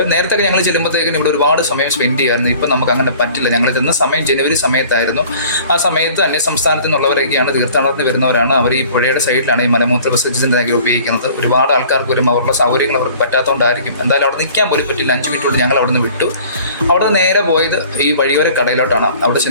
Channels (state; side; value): inverted; both; correlation -0.49